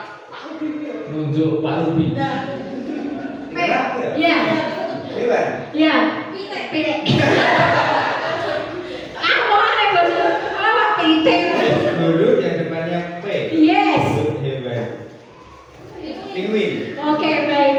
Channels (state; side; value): identical; both; correlation 1.00